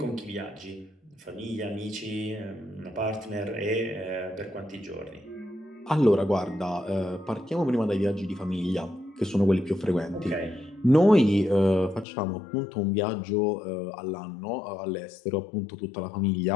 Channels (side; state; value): right; drops out; at 12.1 s